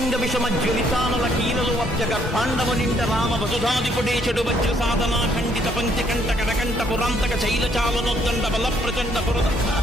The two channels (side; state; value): both; normal; correlation 0.68